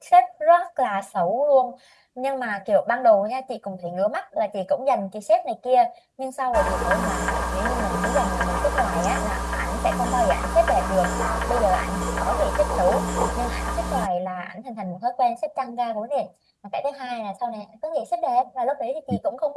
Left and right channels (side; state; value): both; identical; correlation 1.00